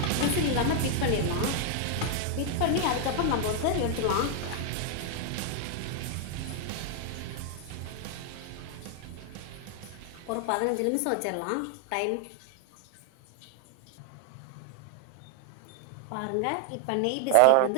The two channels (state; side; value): different; both; correlation 0.00